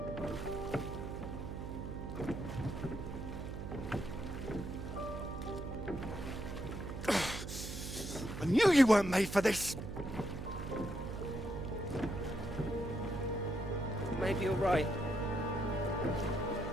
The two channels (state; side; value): noise; right; hum, 7 dB below the sound